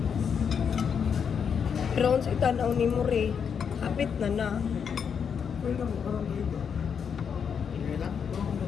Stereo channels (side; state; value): right; quieter; 7.0 dB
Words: Pero sa itanaw ni Muri, hapit na. Hindi lang.